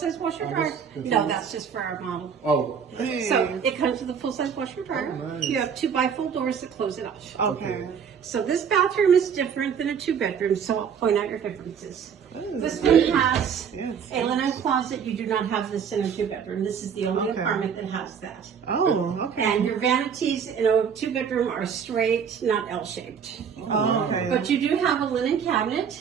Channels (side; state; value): left; quieter; 7.2 dB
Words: washer Oh, dryer. this- No, that's just for our model. Oh. So it comes with a full-size washer dryer. Oh, nice. You have 2 bifold doors that close it off. Okay. So this bathroom is different than a 2-bedroom, so I'll point out your differences. Ooh, This one has Yes. a linen closet. You do not have this in a 2-bedroom. This is the only Okay. apartment that has that. Oh, okay. And your vanities in a 2-bedroom are straight, not L-shaped. Oh, okay. But you do have a linen